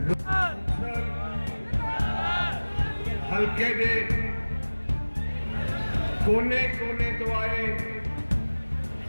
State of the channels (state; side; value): inverted; both; correlation -1.00